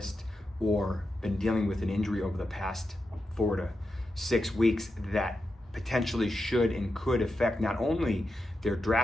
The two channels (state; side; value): normal; both; correlation 0.89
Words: or been dealing with an injury over the past 4 to 6 weeks that potentially should and could affect not only their